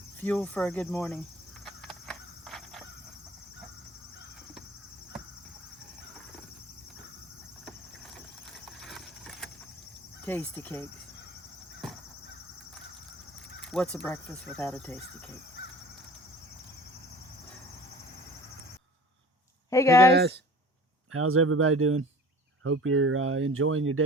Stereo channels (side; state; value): both; normal; correlation 0.43